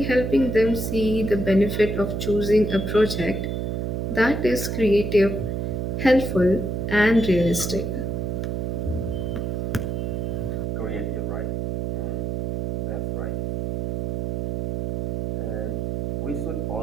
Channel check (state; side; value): noise; right; hum, 1 dB below the sound